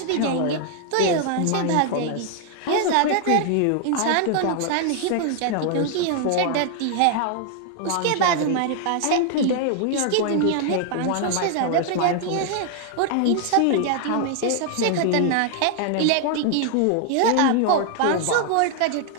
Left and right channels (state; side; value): different; both; correlation 0.00